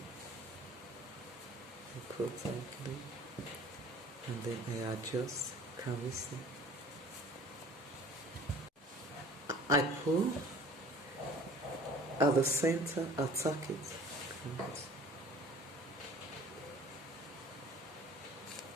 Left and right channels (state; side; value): normal; both; correlation 0.48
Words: I pull tightly, and then I adjust. Can we see? I pull at the center, attack it.